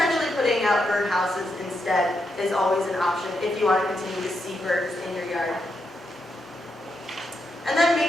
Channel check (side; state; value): both; normal; correlation 0.83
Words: putting out bird houses instead is always an option if you want to continue to see birds in your yard. And then